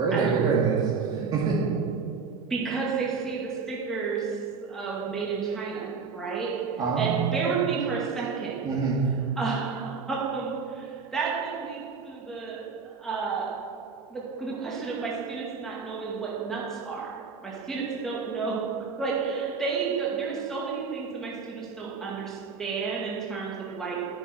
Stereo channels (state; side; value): quieter; left; 5.1 dB